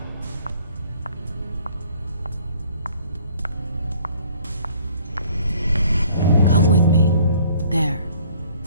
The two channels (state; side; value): inverted; both; correlation -0.56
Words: Come with me. There.